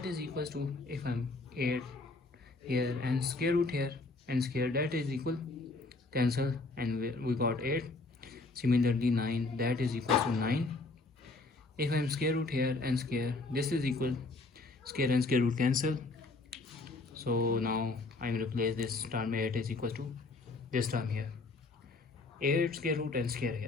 is equals to, if I'm 8 here and square root here and square, that is equal, cancel, and we got 8. Similarly 9, that is equal to 9. If I'm square root here and square, this is equal, square and square root cancel. So now I'm replace this term 8 is equal to this term here, 8 square root and square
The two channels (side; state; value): right; quieter; 3.4 dB